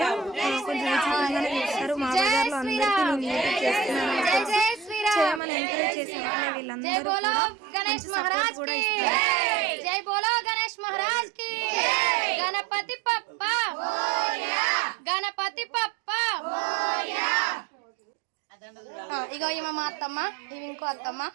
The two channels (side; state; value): left; drops out; at 5.4 s